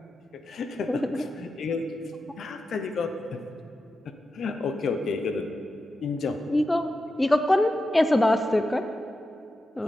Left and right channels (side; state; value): both; normal; correlation 0.90